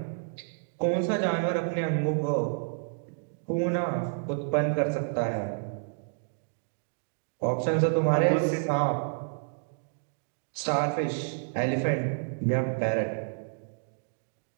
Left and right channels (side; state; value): left; silent; digital silence